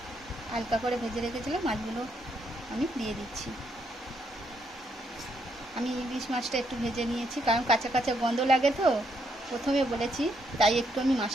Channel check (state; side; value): normal; both; correlation 0.75